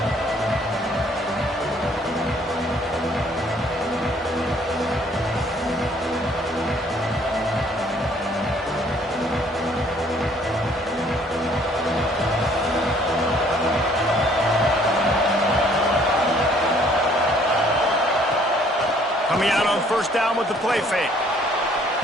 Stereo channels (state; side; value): normal; both; correlation 0.61